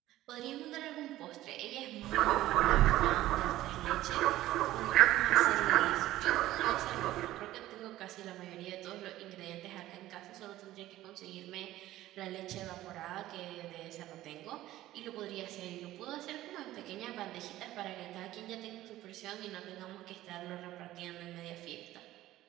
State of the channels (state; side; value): quieter; left; 15.2 dB